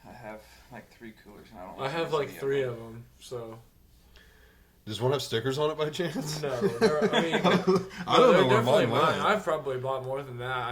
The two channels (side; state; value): both; identical; correlation 1.00